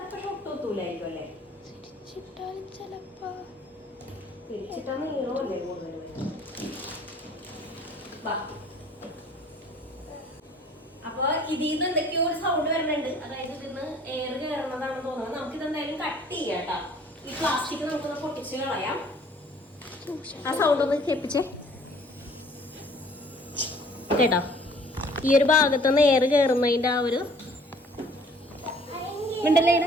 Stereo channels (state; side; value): normal; both; correlation 0.55